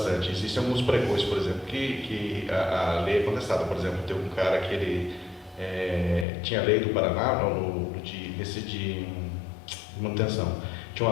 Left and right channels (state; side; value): drops out; right; at 6.2 s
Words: existem alguns precões, por exemplo, que a lei é contestada. Por exemplo, tem um cara que ele tinha a lei do Paraná, de manutenção. Tinha